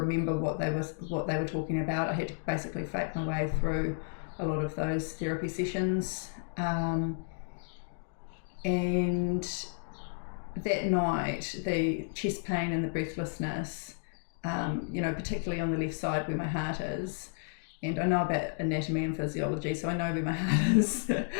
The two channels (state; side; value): silent; right; digital silence